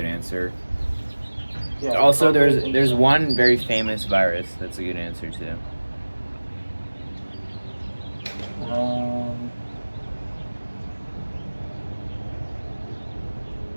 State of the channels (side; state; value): both; inverted; correlation -1.00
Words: answer. Yeah, Also, COVID there's one very famous virus that's a good answer too.